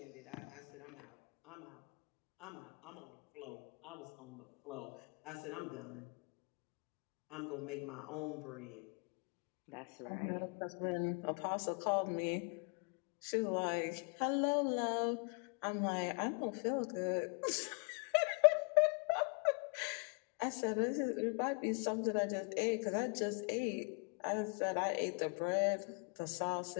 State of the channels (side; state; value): right; quieter; 36.2 dB